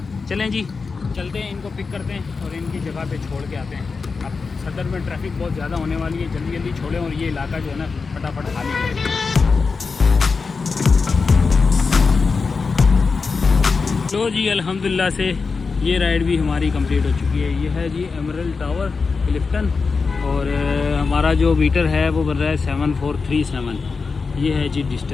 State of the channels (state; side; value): quieter; right; 4.7 dB